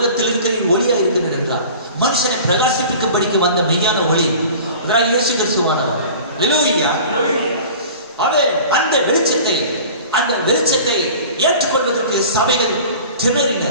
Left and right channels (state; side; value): inverted; both; correlation -0.42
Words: இருக்கிறேன், ஒளியா இருக்கிறேன் என்றார். மனுஷனை பிரகாசிப்பிக்கும்படிக்கு வந்த மெய்யான ஒளி இயேசு கிறிஸ்துவானவர். ஹல்லேலூயா. அவன் அந்த வெளிச்சத்தை ஏற்றுக்கொள்வதற்கு சபைகள்